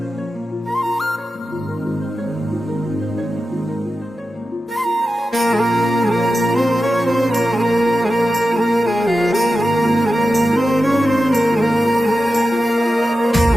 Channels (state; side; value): normal; both; correlation 0.92